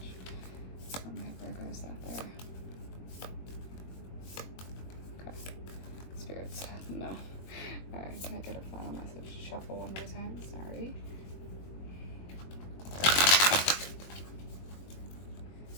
from my Virgos out there? Okay. Spirits, no. Alright, can I get a final message? Shuffle one more time, sorry.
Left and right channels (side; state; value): right; late; 21 ms